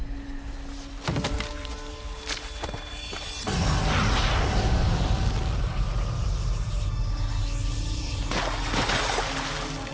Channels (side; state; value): both; identical; correlation 1.00